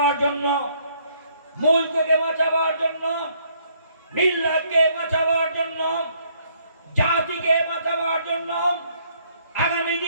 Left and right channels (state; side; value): inverted; both; correlation -0.67